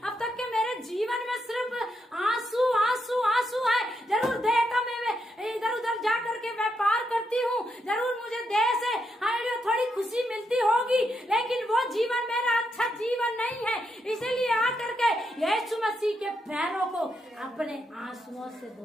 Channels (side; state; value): both; normal; correlation 0.81